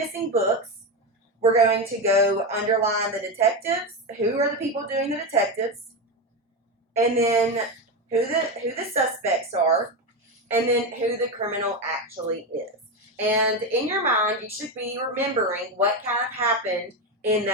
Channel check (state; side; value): normal; both; correlation 0.14